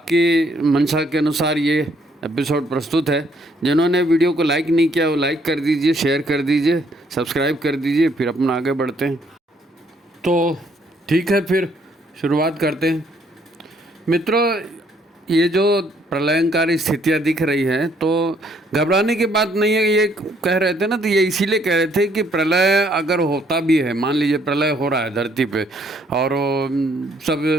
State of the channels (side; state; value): both; normal; correlation 0.67